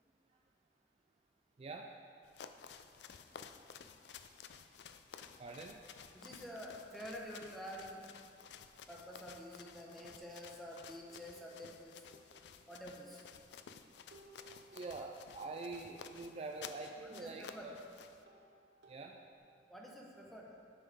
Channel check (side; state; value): both; normal; correlation 0.25